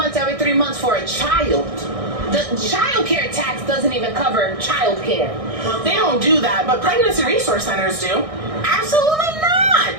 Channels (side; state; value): left; late; 1.6 ms